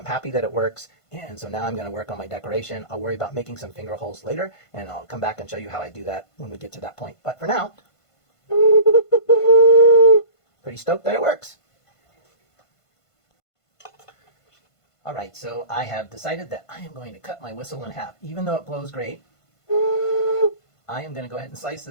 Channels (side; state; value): right; late; 1.5 ms